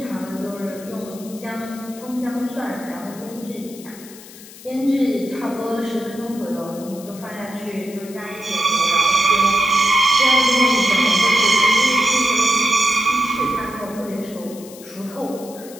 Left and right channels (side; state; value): left; noise; hiss, 18 dB below the sound